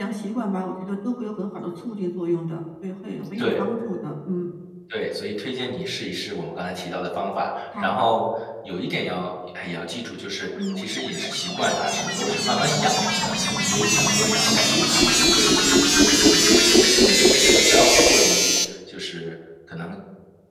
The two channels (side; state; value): both; identical; correlation 1.00